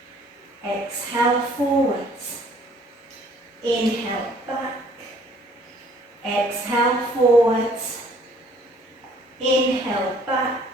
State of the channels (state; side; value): normal; both; correlation 0.58